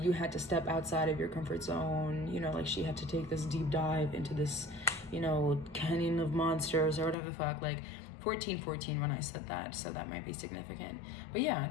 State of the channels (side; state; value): right; drops out; at 7.2 s